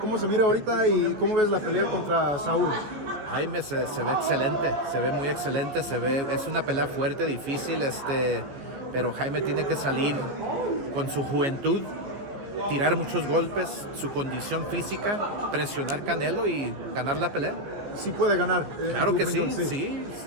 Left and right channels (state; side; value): late; left; 15 ms